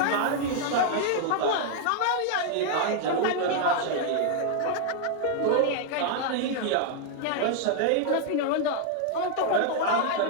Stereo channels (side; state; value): both; different; correlation 0.00